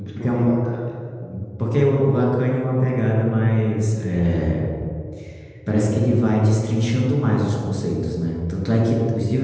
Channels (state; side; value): identical; both; correlation 1.00